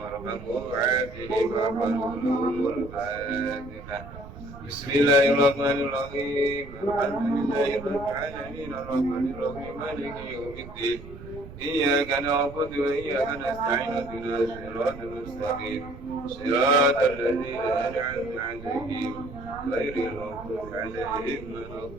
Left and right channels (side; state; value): right; noise; rumble, 15 dB below the sound